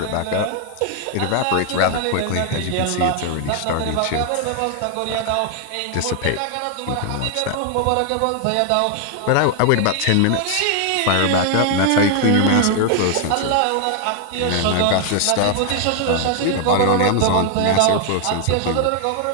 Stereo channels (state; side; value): different; both; correlation 0.00